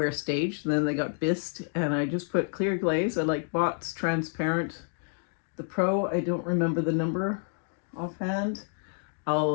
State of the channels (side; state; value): right; silent; 59 dB below the other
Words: stage. Then they got bisqued, and I just put clear glaze. I like Bott's transparent. The Pro, I don't remember the number offhand.